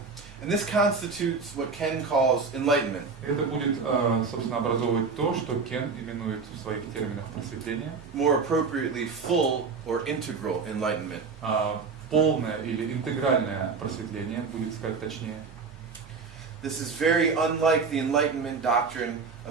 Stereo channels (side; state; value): left; quieter; 4.9 dB